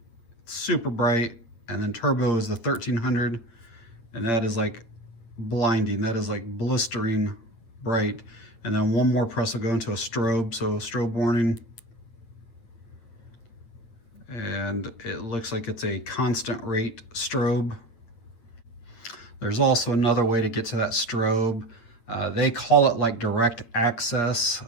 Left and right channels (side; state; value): right; late; 9.0 ms